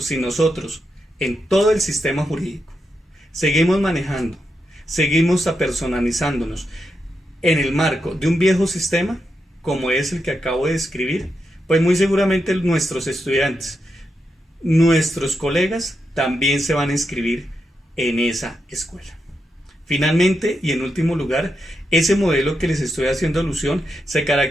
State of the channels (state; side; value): normal; both; correlation 0.85